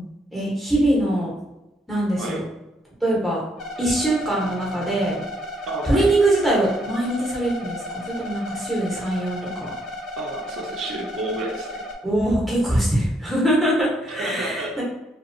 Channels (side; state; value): both; normal; correlation 0.72